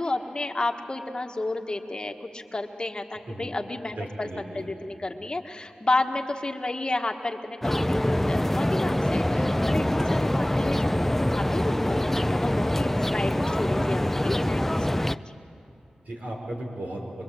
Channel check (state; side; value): normal; both; correlation 0.98